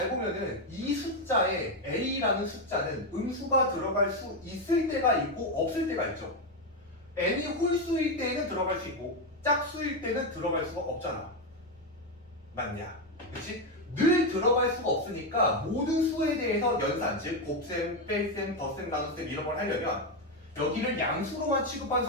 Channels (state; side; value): normal; both; correlation 0.07